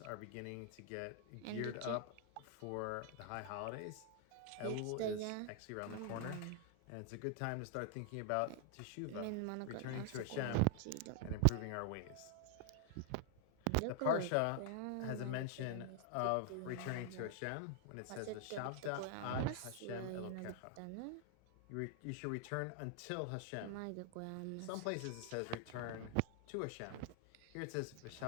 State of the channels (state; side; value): different; both; correlation 0.00